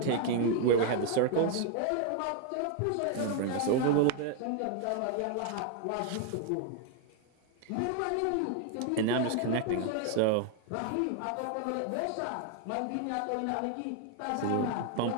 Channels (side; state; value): both; different; correlation 0.00